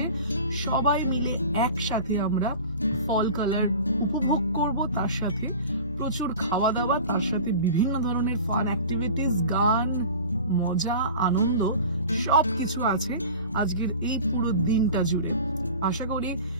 সবাই মিলে একসাথে আমরা ফল কালার উপভোগ করবো, তার সাথে প্রচুর খাওয়া দাওয়া, তার সাথে বিভিন্ন ধরনের ফান অ্যাক্টিভিটিস, গান, মজা, আনন্দ সবকিছু আছে আজকের এই পুরো দিনটা জুড়ে। আশা করি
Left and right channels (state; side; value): inverted; both; correlation -0.38